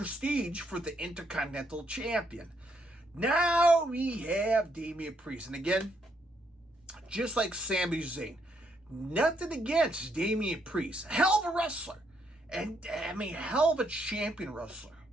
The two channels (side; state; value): both; normal; correlation 0.75